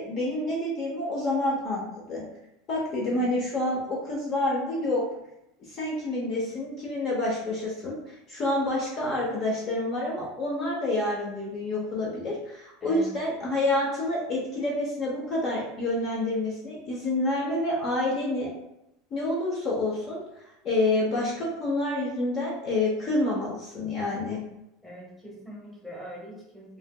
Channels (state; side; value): normal; both; correlation 0.33